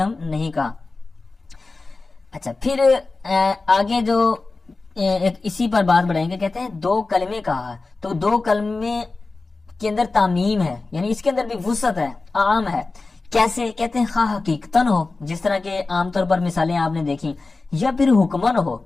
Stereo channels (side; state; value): right; quieter; 3.6 dB